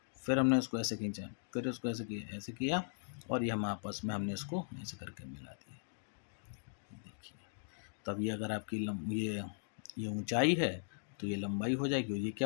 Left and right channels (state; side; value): silent; right; digital silence